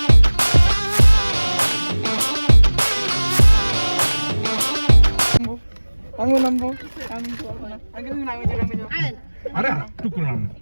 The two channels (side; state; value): both; inverted; correlation -1.00